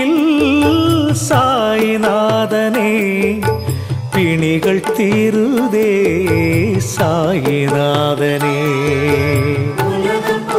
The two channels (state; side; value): identical; both; correlation 1.00